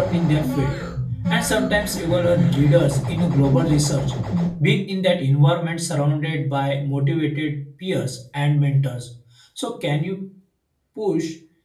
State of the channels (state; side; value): identical; both; correlation 1.00